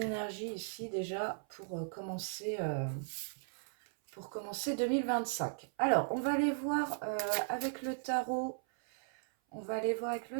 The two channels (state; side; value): silent; left; 53 dB below the other